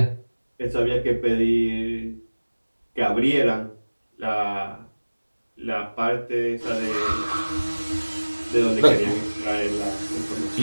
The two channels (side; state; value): both; inverted; correlation -1.00